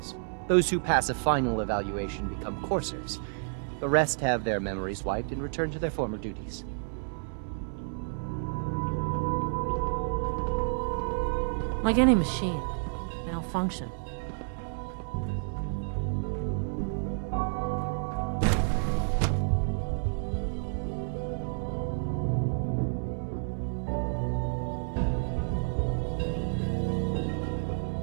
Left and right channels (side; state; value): left; silent; 58 dB below the other